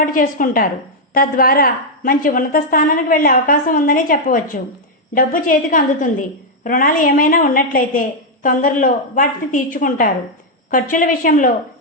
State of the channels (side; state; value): both; normal; correlation -0.02